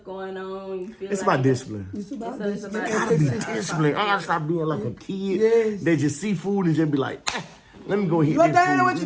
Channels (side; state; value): both; identical; correlation 1.00